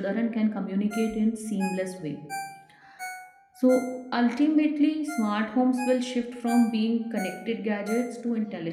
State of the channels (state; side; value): identical; both; correlation 1.00